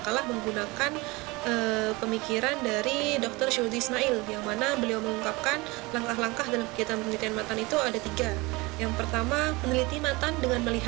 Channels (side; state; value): left; quieter; 23.8 dB